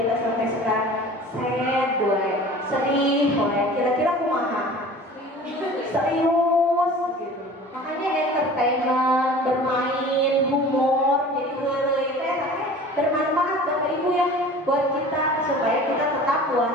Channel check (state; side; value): normal; both; correlation 0.42